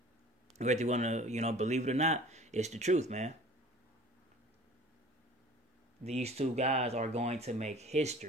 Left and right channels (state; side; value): normal; both; correlation 0.45